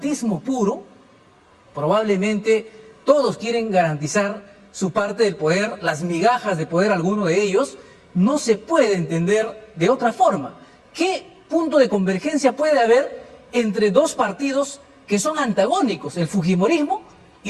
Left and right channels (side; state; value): both; identical; correlation 1.00